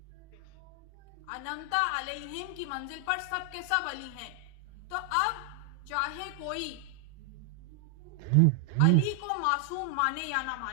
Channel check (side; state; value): both; different; correlation 0.00